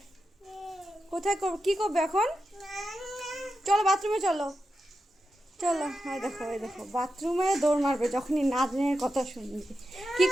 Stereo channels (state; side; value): normal; both; correlation 0.89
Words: কোথায় কি করবে এখন? চলো বাথরুমে চলো। চলো হ্যাঁ দেখো এই দেখো বাথরুমে দৌড় মারবে যখনই নাচনের কথা শুনবে। কি